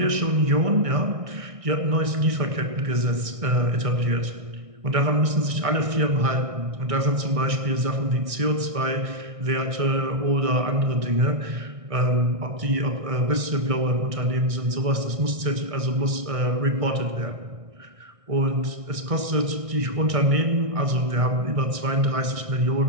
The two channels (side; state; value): left; late; 1.6 ms